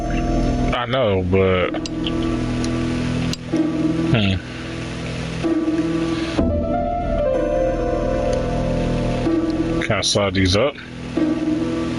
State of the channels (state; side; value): identical; both; correlation 1.00